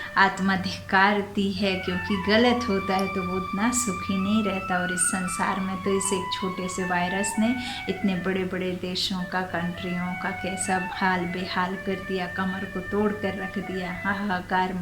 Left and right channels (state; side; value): identical; both; correlation 1.00